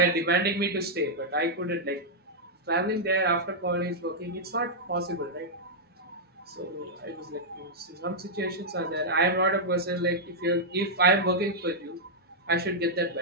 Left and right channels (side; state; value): both; normal; correlation -0.07